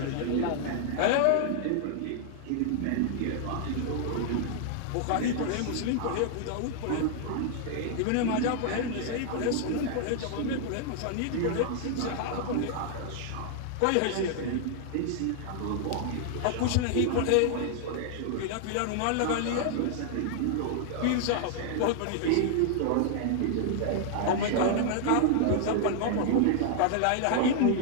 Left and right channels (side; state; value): both; different; correlation 0.00